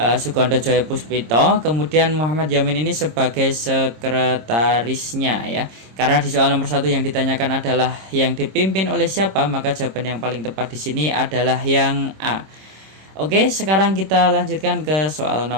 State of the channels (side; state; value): left; late; 26 ms